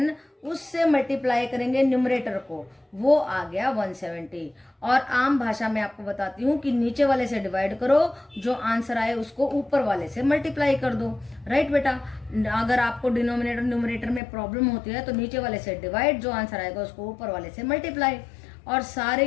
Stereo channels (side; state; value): right; drops out; at 14.2 s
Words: उससे मल्टीप्लाई करेंगे न्यूमरेटर को, वो आ गया 170। और आम भाषा में आपको बताती हूँ कि नीचे वाले से डिवाइड करो, जो आंसर आए उसको ऊपर वाले से मल्टीप्लाई कर दो। राइट बेटा, अगर आपको डिनोमिनेटर न्यूमरेटर में प्रॉब्लम होती है तो नीचे वाले से डिवाइड, जो आंसर आएगा उसको ऊपर वाले से मल्टीप्लाई, और सारे